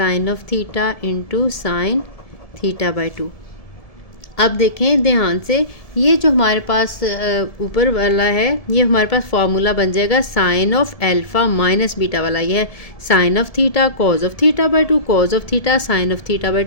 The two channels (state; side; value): late; right; 1.7 ms